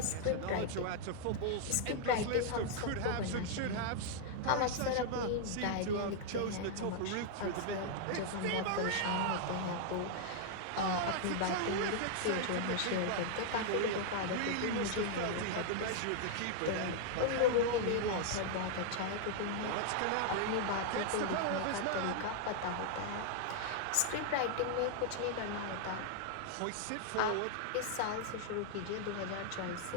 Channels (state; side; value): different; both; correlation 0.00